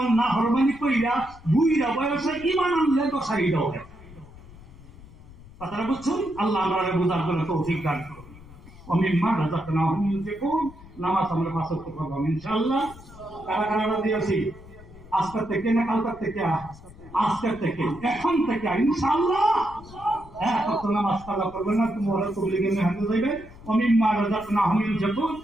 না হরমানি কইরা বুইরা বয়সে ঈমান আনলে দশাই দাও। কথাটা বুঝছুন? আল্লাহ আমরা বুঝার জন্য তৌফিক দান করুন। ওমিম্মা রাযাকনাহুম ইউনফিকুন। নামাজ আমরা পাঁচ ওয়াক্ত পড়ব ইনশাআল্লাহ। কারা কারা দিয়েছি? আজকের থেকে না কালকের থেকে? আজকের থেকে, এখন থেকে ইনশাআল্লাহ। হ্যাঁ, কত নামাজ কাজা করবেন না, তোমরা তবলিগে মেহনত যাইবে। ওমিম্মা রাযাকনাহুম ইউনফিকুন,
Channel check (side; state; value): left; noise; rumble, 20 dB below the sound